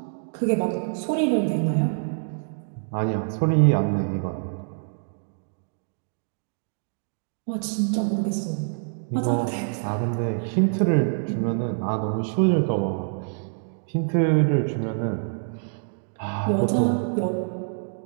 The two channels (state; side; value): silent; left; digital silence